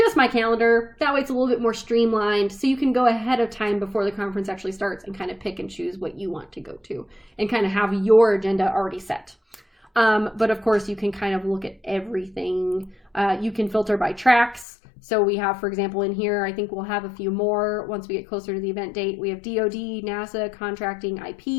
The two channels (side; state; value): right; drops out; at 14.7 s